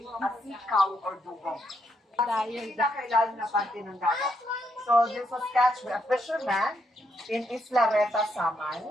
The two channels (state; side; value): normal; both; correlation 0.78